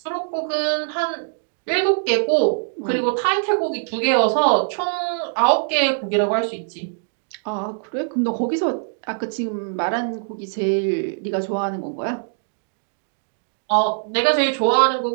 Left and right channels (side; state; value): left; silent; digital silence